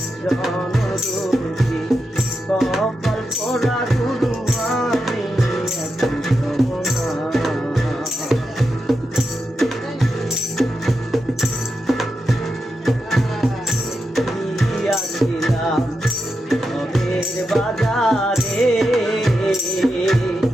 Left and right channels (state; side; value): normal; both; correlation 0.87